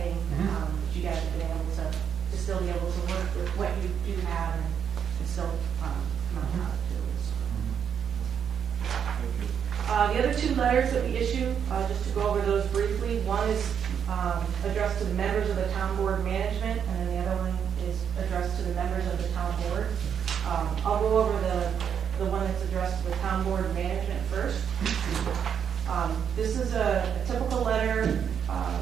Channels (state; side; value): quieter; left; 7.8 dB